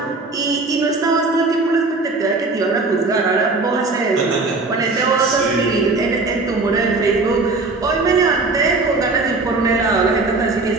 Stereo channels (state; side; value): quieter; left; 3.5 dB